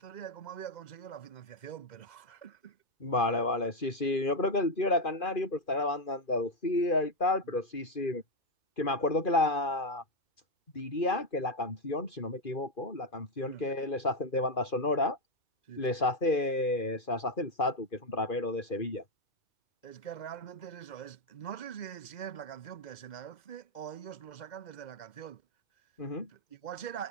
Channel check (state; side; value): late; right; 2.5 ms